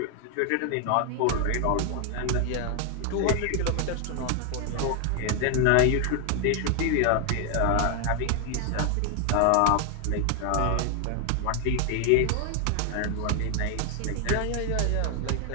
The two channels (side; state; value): both; different; correlation 0.00